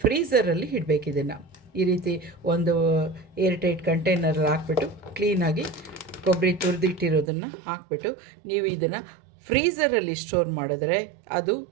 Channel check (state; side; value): drops out; left; at 7.2 s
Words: ಫ್ರೀಝರಲ್ಲಿ ಇಡಬೇಕು. ಇದನ್ನು ಈ ರೀತಿ ಒಂದು ಏರ್ಟೈಟ್ ಕಂಟೈನರಲ್ಲಿ ಹಾಕ್ಬಿಟ್ಟು ಕ್ಲೀನಾಗಿ ಕೊಬ್ಬರಿ ತುರಿದಿಟ್ಟಿರೋದನ್ನು ಹಾಕ್ಬಿಟ್ಟು ನೀವು ಇದನ್ನು ಫ್ರೀಝರಲ್ಲಿ ಸ್ಟೋರ್ ಮಾಡಿದ್ರೆ ಅದು